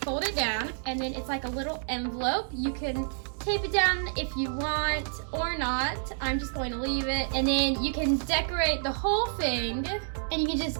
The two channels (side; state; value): left; silent; 59 dB below the other